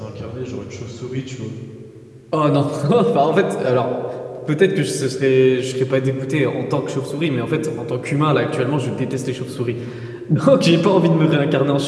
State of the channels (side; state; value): both; identical; correlation 1.00